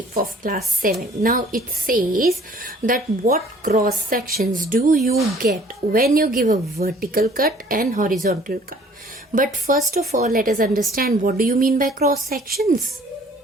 of class 7. Now it says that what cross sections do you get when you give a vertical cut and horizontal cut. But first of all, let us understand what do you mean by cross sections.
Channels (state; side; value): normal; both; correlation 0.55